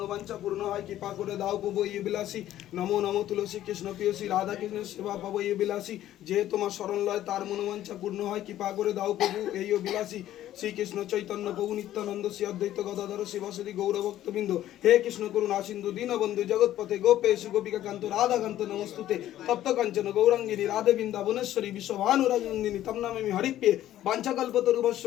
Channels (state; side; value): quieter; right; 12.9 dB